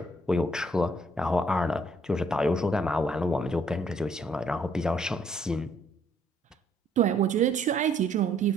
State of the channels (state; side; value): normal; both; correlation 0.66